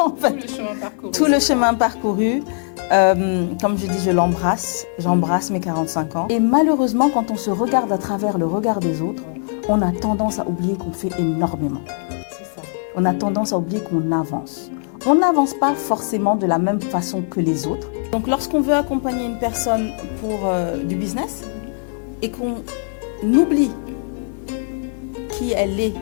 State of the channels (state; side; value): silent; right; 56 dB below the other